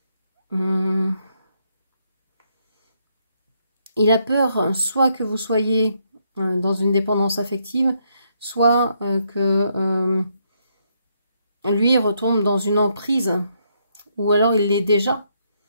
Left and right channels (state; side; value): inverted; both; correlation -0.75